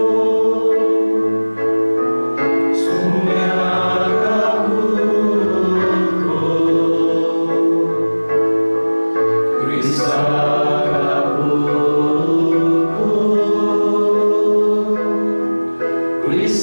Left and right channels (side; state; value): both; inverted; correlation -1.00